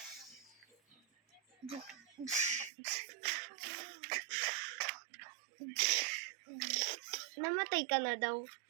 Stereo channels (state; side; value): drops out; left; at 2.7 s